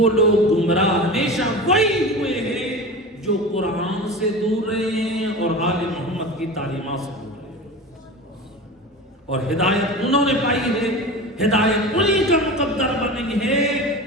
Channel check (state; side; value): normal; both; correlation 0.30